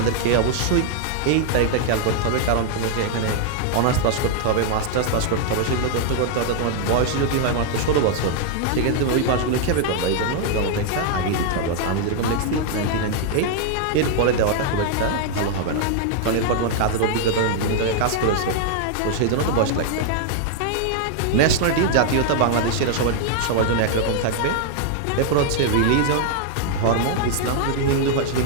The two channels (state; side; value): different; both; correlation 0.00